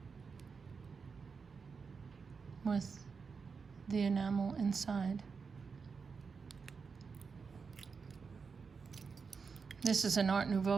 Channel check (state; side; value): quieter; left; 5.3 dB